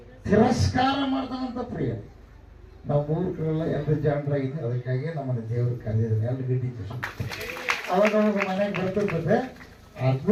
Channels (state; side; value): identical; both; correlation 1.00